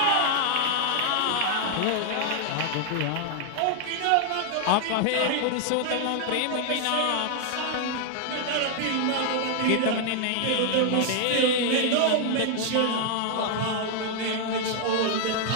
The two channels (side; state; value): both; different; correlation 0.00